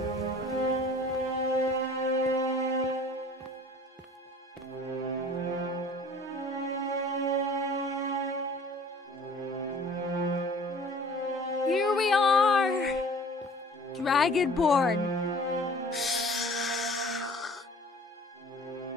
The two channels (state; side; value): normal; both; correlation 0.48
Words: Here we are! Dragonborn!